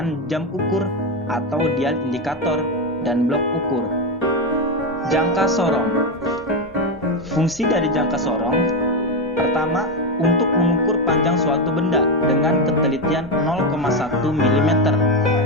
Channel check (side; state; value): both; normal; correlation 0.10